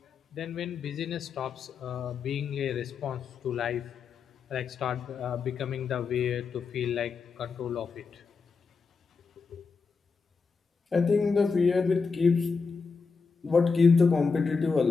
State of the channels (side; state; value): right; quieter; 4.9 dB